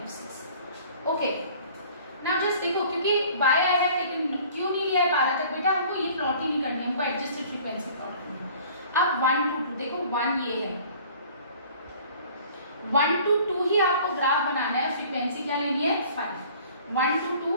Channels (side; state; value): both; inverted; correlation -0.50